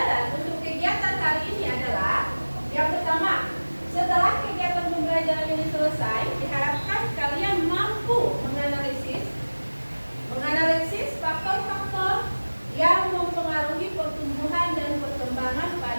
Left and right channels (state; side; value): inverted; both; correlation -1.00